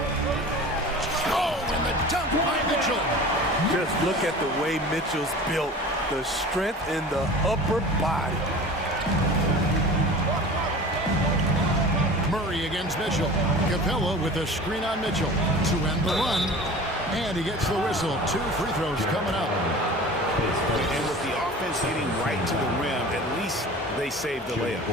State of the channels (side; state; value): both; normal; correlation 0.39